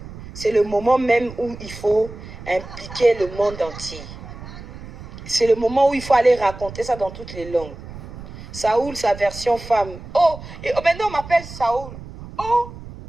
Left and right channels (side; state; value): right; noise; rumble, 14 dB below the sound